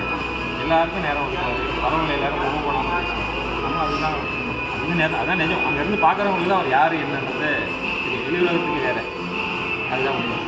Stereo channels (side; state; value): both; identical; correlation 1.00